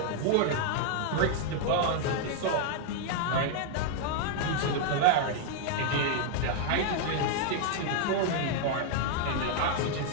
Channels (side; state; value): both; different; correlation 0.00